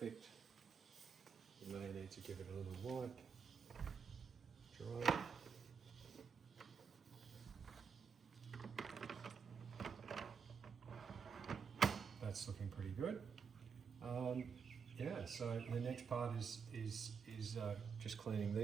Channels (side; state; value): left; quieter; 6.1 dB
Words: You may need to give it a little wipe. Dry. That's looking pretty good. Yeah, so the next part is just cleaning